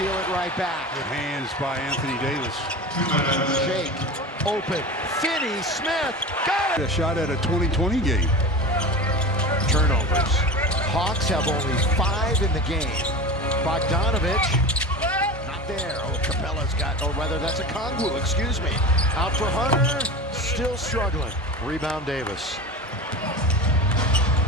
it right back. Good hands by Anthony Davis. Shake. Open. Finney Smith. Got it. A shot at a 2020 game. Turnovers. Hawks have only 5 in the game. Bogdanovich. Not there. Oh, Capella's got, or rather that's a Kongwu, excuse me. Out for Hunter. Still struggling. Rebound Davis.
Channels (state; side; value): normal; both; correlation 0.30